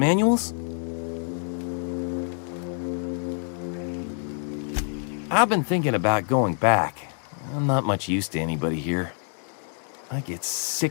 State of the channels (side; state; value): right; silent; 58 dB below the other